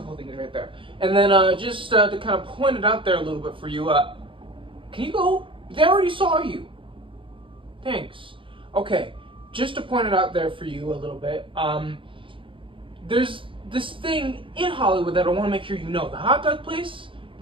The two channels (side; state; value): left; late; 0.25 ms